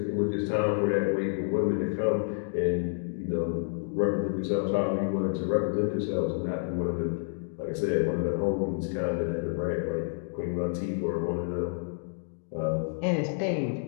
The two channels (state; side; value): silent; right; digital silence